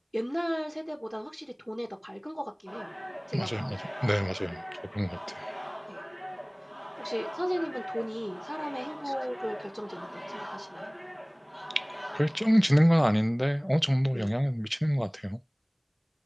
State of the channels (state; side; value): identical; both; correlation 1.00